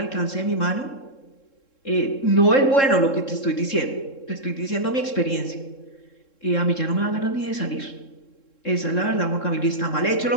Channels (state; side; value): late; right; 3.7 ms